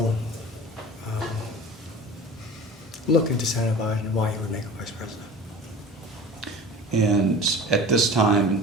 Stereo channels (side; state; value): both; normal; correlation 0.38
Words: look into Senator Biden and why he would make a vice president. And at this time in